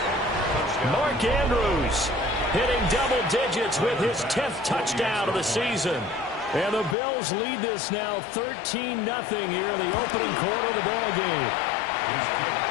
Mark Andrews hitting double digits with his 10th touchdown of the season. And the Bills lead this now 13-0 here in the opening quarter of the ball game.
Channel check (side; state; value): right; drops out; at 7.0 s